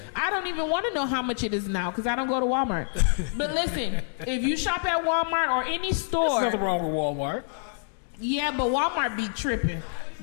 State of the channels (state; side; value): silent; right; digital silence